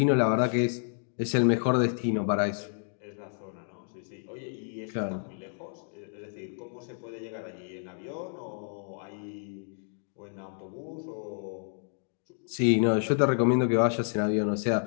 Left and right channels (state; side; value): silent; right; 58 dB below the other